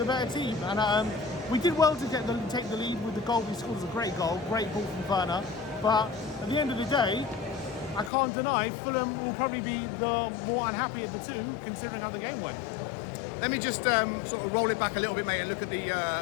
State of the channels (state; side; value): drops out; right; at 8.1 s